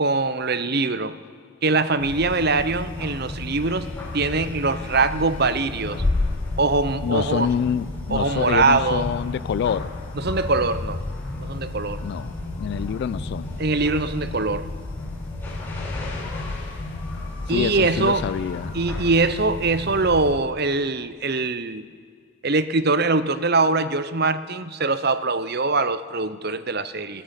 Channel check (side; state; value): both; normal; correlation -0.02